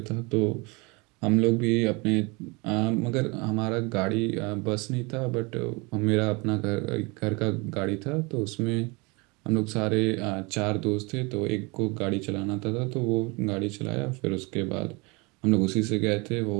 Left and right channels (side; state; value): left; quieter; 27.6 dB